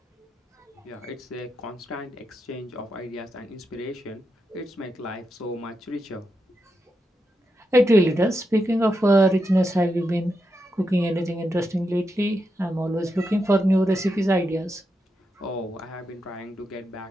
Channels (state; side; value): normal; both; correlation 0.86